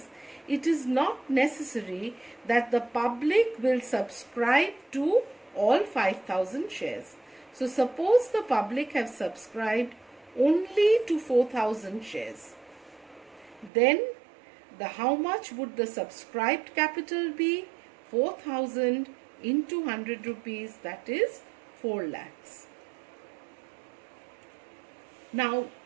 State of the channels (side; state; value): left; drops out; at 13.7 s